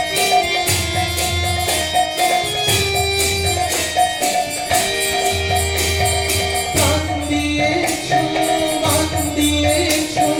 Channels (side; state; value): both; identical; correlation 1.00